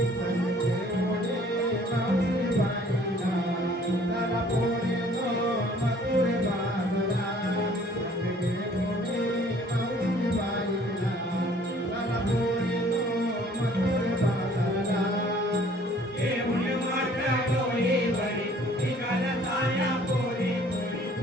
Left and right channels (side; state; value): both; normal; correlation 0.56